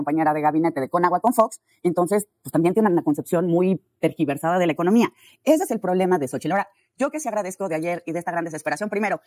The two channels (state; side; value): identical; both; correlation 1.00